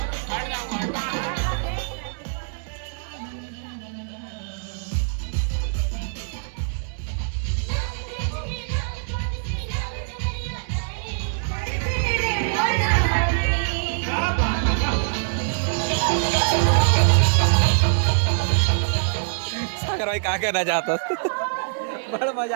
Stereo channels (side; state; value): left; silent; 63 dB below the other